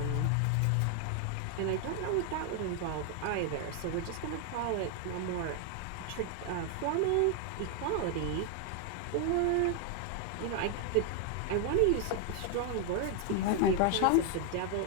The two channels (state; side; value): different; both; correlation 0.00